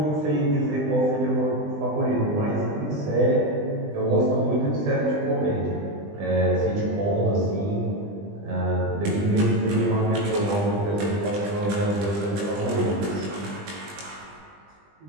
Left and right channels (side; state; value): left; late; 20 ms